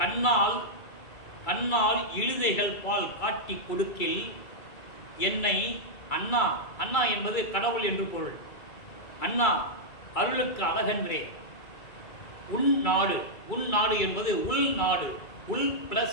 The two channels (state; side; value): late; right; 2.3 ms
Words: கண்ணால் இழுதைகள் பால் காட்டி கொடுக்கில் என்னை அண்ணா, அண்ணா என்பது கடவுள் என்று பொருள். அண்ணா அருளுக்கு அழகன்றே. உன் நாடு என்பது உள் நாடு, உள்